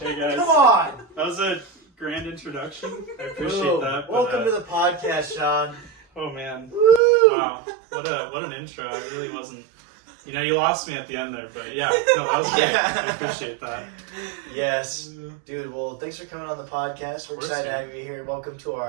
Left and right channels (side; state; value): left; drops out; at 7.0 s